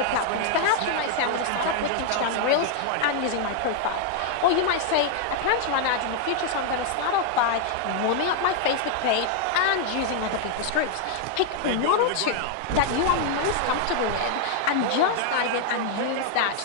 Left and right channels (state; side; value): different; both; correlation 0.00